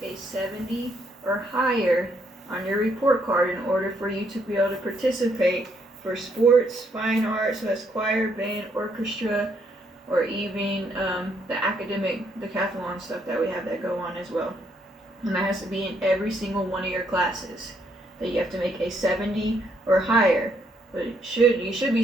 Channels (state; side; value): normal; both; correlation 0.72